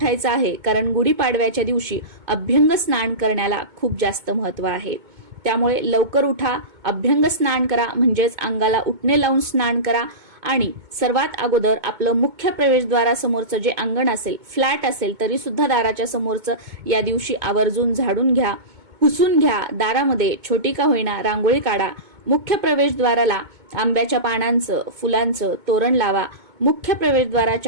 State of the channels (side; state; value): left; late; 2.2 ms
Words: आहे, कारण गुढीपाडव्याच्या दिवशी अभ्यंग स्नान करण्याला खूप जास्त महत्त्व आहे। त्यामुळे लवकर उठा, अभ्यंग स्नान करा, म्हणजेच अंगाला उटणे लावून स्नान करा आणि सर्वात अगोदर आपलं मुख्य प्रवेशद्वारासमोरचं जे अंगण असेल, फ्लॅट असेल तरी सुद्धा दाराच्या समोरचं या दिवशी आवर्जून झाडून घ्या, पुसून घ्या। दारामध्ये छोटी का होईना रांगोळी काढा। मुख्य प्रवेशद्वाराला आंब्याच्या पानांचं, फुलांचं तोरण लावा। मुख्य